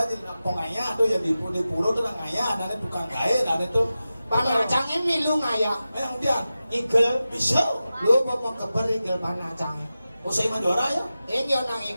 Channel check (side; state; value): both; inverted; correlation -0.93